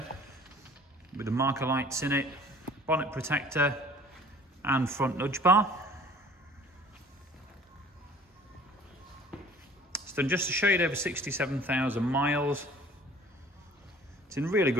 with the marker lights in it, bonnet protector and front nudge bar. It's done just a shade over 67,000 miles. It's in really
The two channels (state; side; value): normal; both; correlation 0.50